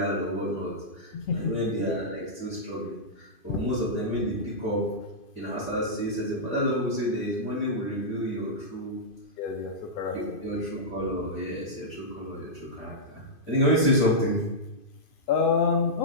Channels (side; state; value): right; late; 2.5 ms